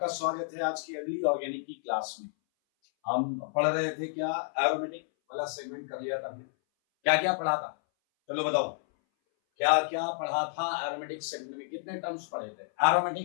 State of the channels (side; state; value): right; silent; 57 dB below the other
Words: स्वागत है आज की अगली ऑर्गेनिक की क्लास में। हम पढ़ रहे थे क्या, एरोमेटिक वाला सेगमेंट कर लिया था हमने। क्या क्या पढ़ा था, चलो बताओ क्या क्या पढ़ा था एरोमेटिक सेगमेंट में। कितने टर्म्स पढ़े थे?